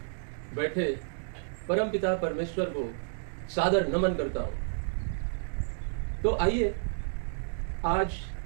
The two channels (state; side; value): silent; left; digital silence